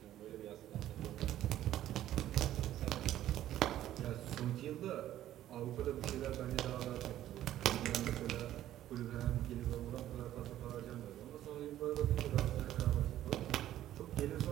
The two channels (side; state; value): left; quieter; 12.8 dB